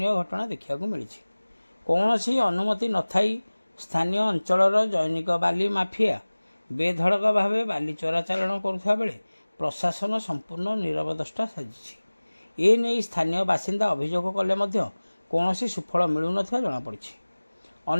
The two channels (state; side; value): inverted; both; correlation -1.00